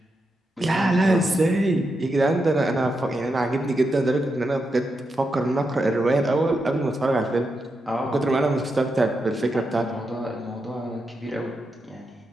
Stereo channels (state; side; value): normal; both; correlation 0.85